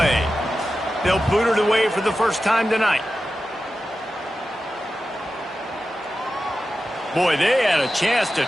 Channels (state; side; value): normal; both; correlation 0.93